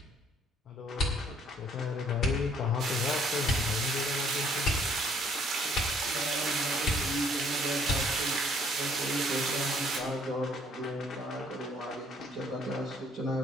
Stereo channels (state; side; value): normal; both; correlation 0.62